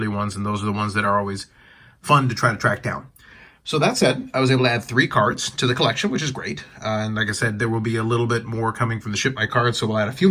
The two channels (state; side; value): identical; both; correlation 1.00